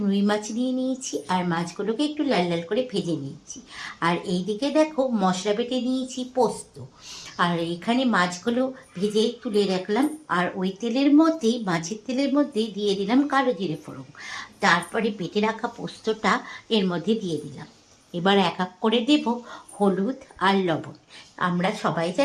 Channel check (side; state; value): both; identical; correlation 1.00